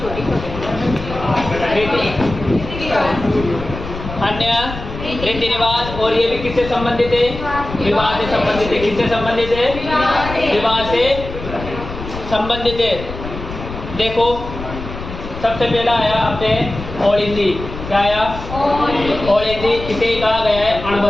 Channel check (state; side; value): noise; left; rumble, 10 dB below the sound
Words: रीति रिवाज। और ये भी किससे संबंधित है? विवाह से संबंधित है। किससे संबंधित है? विवाह से संबंधित है। देखो सबसे पहला आया अपने ओलिंदी। क्या आया? ओलिंदी। इसे कहा गया है